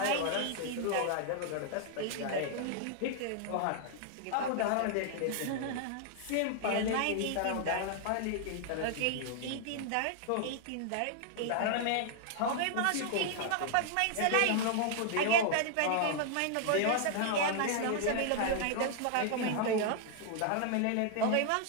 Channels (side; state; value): both; different; correlation 0.00